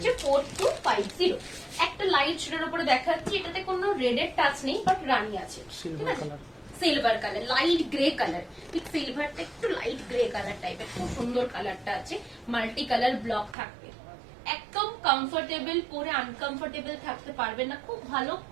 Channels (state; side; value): drops out; left; at 13.6 s